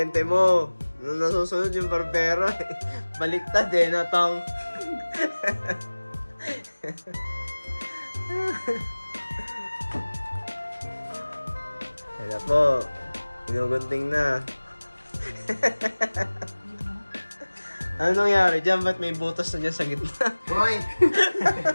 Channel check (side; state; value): both; inverted; correlation -1.00